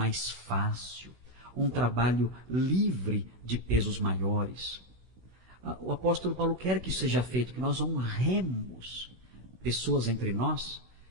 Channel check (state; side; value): late; left; 16 ms